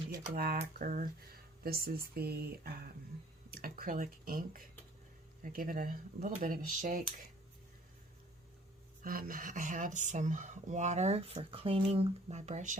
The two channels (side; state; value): both; normal; correlation 0.55